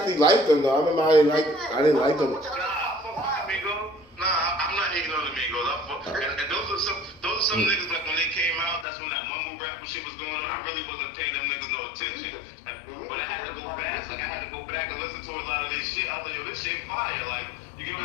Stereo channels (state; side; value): drops out; right; at 8.8 s